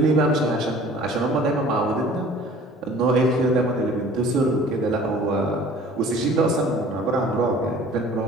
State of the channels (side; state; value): both; normal; correlation 0.49